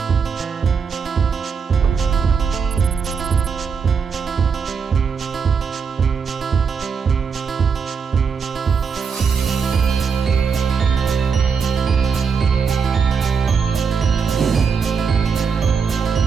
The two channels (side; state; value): left; quieter; 6.0 dB